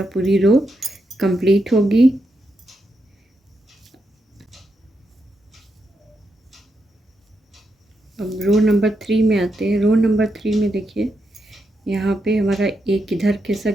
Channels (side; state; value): both; normal; correlation 0.83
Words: पूरी रो कंप्लीट होगी। अब रो नंबर 3 में आते हैं। रो नंबर 3 में देखिए यहाँ पे हमारा एक इधर